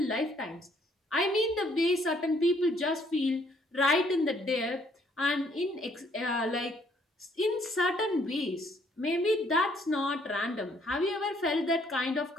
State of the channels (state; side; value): normal; both; correlation 0.66